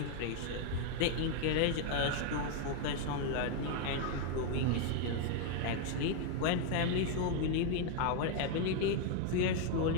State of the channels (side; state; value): both; different; correlation 0.01